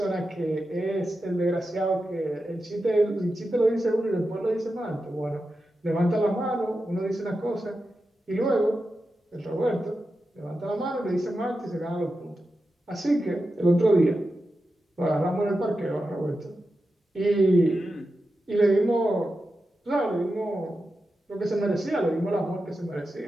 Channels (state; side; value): normal; both; correlation 0.90